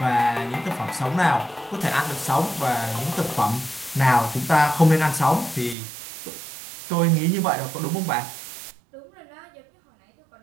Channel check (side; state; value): left; drops out; at 5.8 s